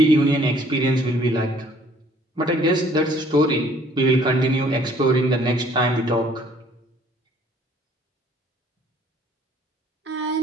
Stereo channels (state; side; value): normal; both; correlation 0.59